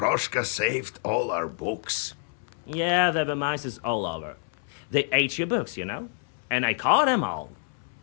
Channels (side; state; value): right; silent; 60 dB below the other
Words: saved all our books. Yeah, there were mice all over. They ate your books, you know? And I caught them all.